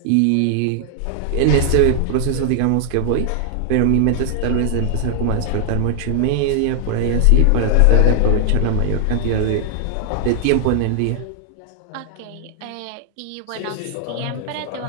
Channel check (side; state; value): both; different; correlation 0.00